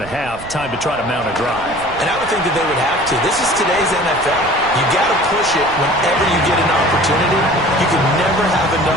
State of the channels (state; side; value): noise; right; rumble, 17 dB below the sound